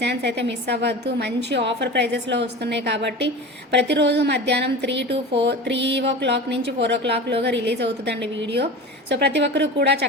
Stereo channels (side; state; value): both; normal; correlation 0.32